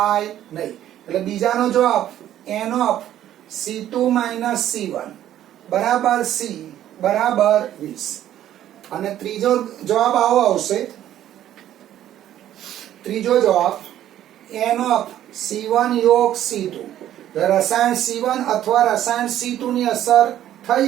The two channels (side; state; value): left; quieter; 12.0 dB